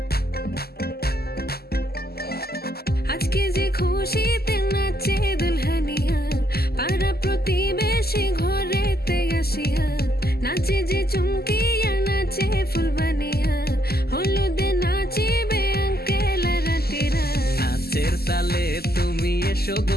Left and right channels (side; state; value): right; late; 0.46 ms